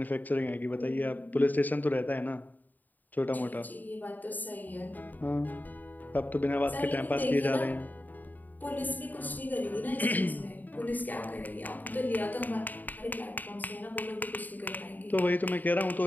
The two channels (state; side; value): late; right; 0.085 ms